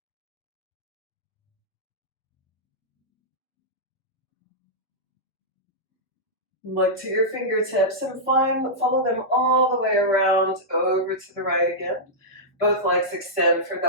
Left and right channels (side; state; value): both; normal; correlation -0.11